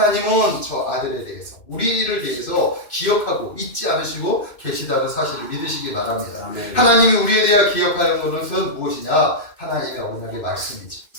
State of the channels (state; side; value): late; right; 2.6 ms